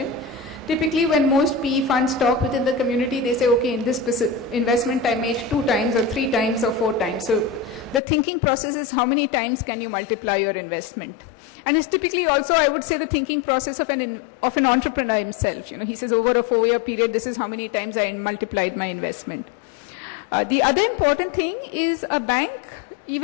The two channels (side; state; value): right; drops out; at 8.0 s